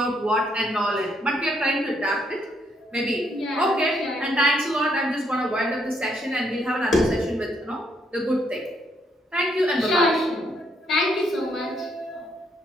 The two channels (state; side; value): normal; both; correlation 0.73